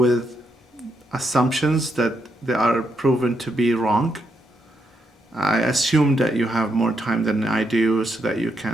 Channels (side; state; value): both; normal; correlation 0.80